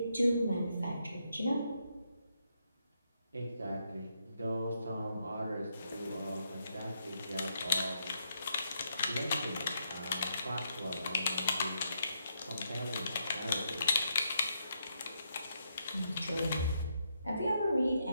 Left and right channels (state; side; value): inverted; both; correlation -0.78